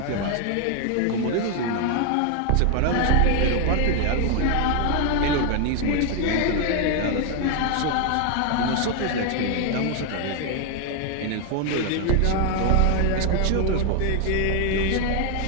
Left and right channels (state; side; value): different; both; correlation 0.00